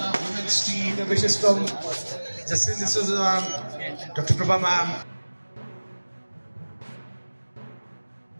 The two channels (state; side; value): inverted; both; correlation -1.00